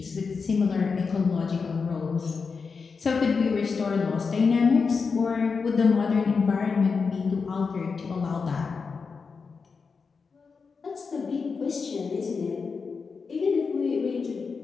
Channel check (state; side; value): quieter; right; 5.1 dB